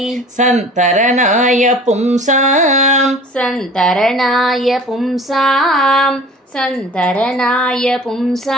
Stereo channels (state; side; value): normal; both; correlation 0.44